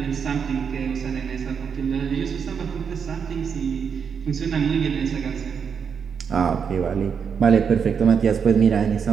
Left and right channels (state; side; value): quieter; left; 6.7 dB